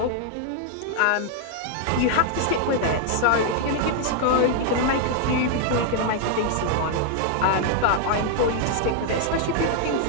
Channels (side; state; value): both; different; correlation 0.00